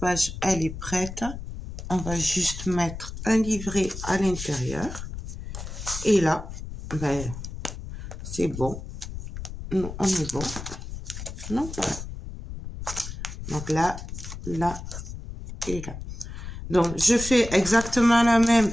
elle est prête. On va juste mettre un livret à l'intérieur. Et là, ben, c'est bon. Nous, on est bon. Non, voilà. Donc là, là et là. Donc, je fais exactement la même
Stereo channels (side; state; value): left; noise; rumble, 9 dB below the sound